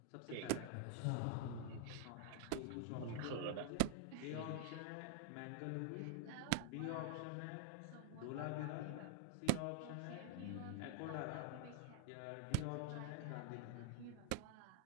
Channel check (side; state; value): both; different; correlation -0.01